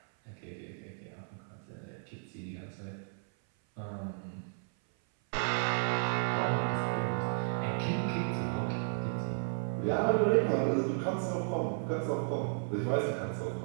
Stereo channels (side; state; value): left; silent; 55 dB below the other